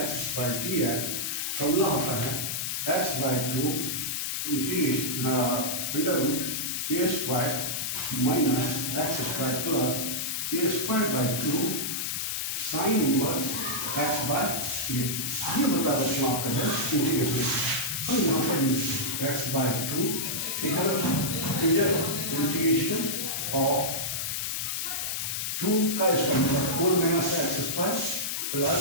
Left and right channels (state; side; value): noise; left; hiss, 1 dB below the sound